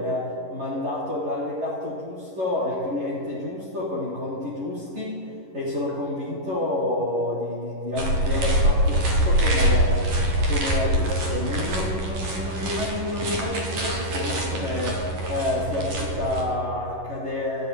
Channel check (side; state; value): left; late; 11 ms